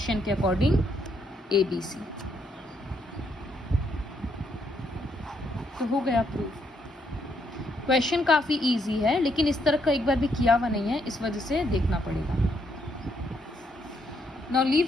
के अकॉर्डिंग ABC। तो हो गया प्रूफ। क्वेश्चन काफ़ी इजी है लेकिन इस तरह का एक बार भी किया हुआ नहीं है, इस वजह से देखना पड़ेगा। नाउ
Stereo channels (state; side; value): normal; both; correlation 0.74